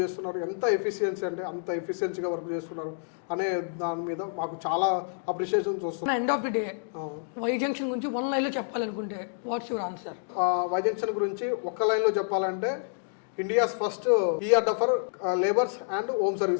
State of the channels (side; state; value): right; silent; digital silence